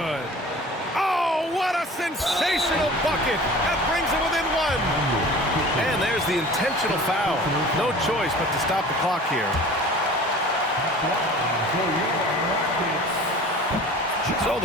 Oh, what a sensational bucket. That brings him within one. And there's the intentional foul. No choice but to stop the clock here. So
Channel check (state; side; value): normal; both; correlation 0.43